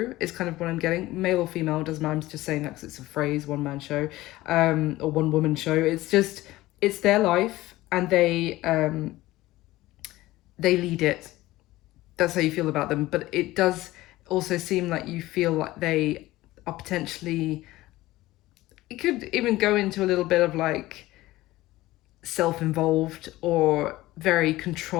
is kind of what I'm getting. Male or female, doesn't matter. I'm just saying that because it's a phrase, one man show, or one woman show. It's just, it's their life and they lead it. That's how you feel about them. But it does also seem like you feel like they are potentially, it could even go into a little bit of like self-involved or very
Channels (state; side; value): quieter; right; 17.5 dB